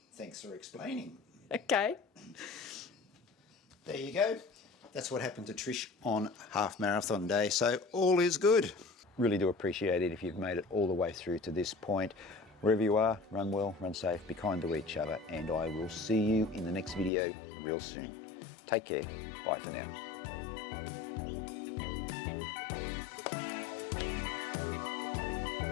Thanks for explaining. Okay. There you go. That's what happened to Trish on half marathon day. So all is good. Really do appreciate it if you've made it all the way through to this point. Wherever you are, run well, run safe, be kind to each other, and I will see you in the next video real soon. Take care. Bye for now.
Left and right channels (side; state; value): right; drops out; at 17.1 s